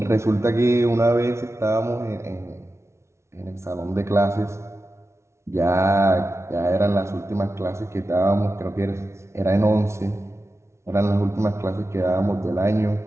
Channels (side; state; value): left; late; 0.13 ms